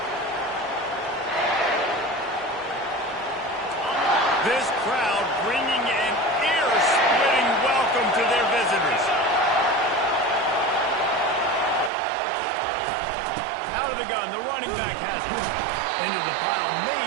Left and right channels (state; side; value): drops out; left; at 11.9 s